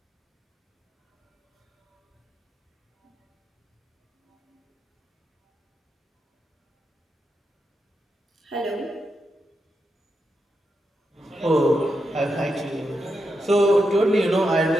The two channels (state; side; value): normal; both; correlation 0.86